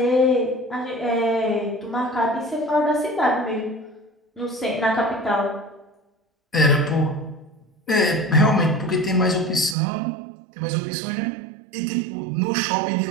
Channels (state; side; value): drops out; left; at 9.8 s